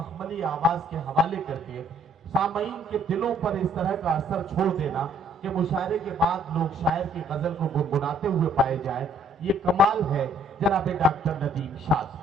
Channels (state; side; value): normal; both; correlation 0.62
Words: آواز کے حوالے کر کے سامعین کے دلوں پر اس طرح کا اثر چھوڑ دینا کہ مشاعرے کے بعد لوگ شاعر کی غزل کو گنگناتے ہوئے پائے جائیں، یہ کمال ہے جناب ڈاکٹر ندیم شاد